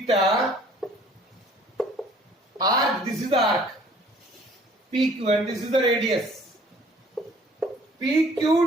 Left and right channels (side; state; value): both; normal; correlation 0.55